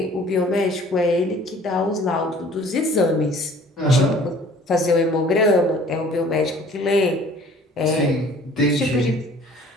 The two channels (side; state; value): both; normal; correlation 0.52